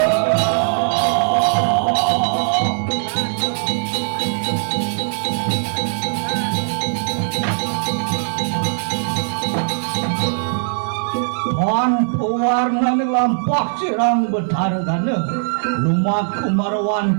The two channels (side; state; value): left; silent; digital silence